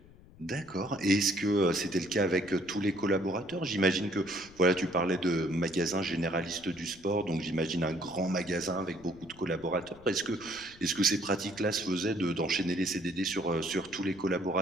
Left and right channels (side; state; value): left; noise; rumble, 23 dB below the sound